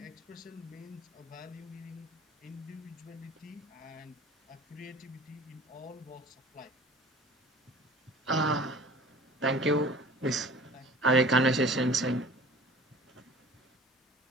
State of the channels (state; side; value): normal; both; correlation 0.44